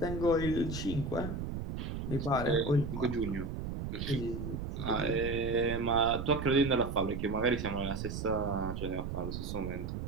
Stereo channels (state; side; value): noise; right; rumble, 5 dB below the sound